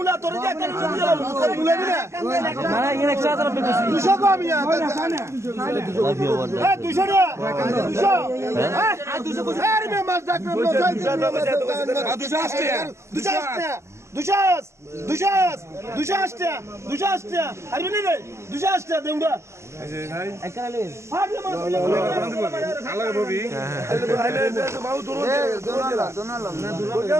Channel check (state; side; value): late; left; 0.13 ms